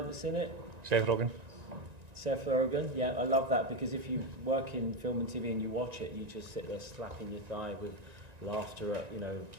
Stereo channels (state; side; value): late; left; 1.9 ms